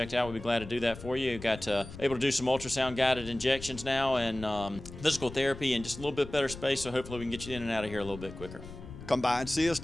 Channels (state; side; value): noise; left; rumble, 13 dB below the sound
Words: out, we'd be glad to do that for you. We've got able to do some ultrasound guided injections now, and physical therapy, and just a little bit better space. So hopefully we can get you in and out of here a little bit quicker. Come by and see us